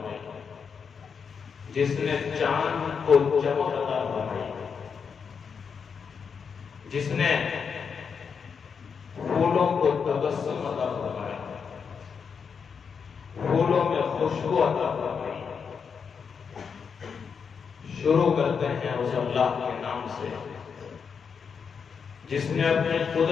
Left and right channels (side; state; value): right; quieter; 6.2 dB